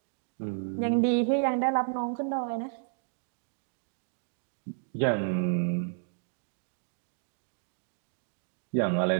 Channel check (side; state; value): left; silent; digital silence